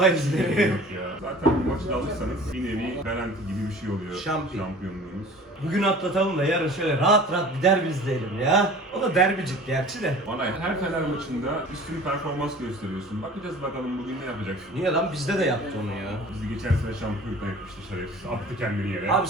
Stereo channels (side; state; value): both; normal; correlation 0.44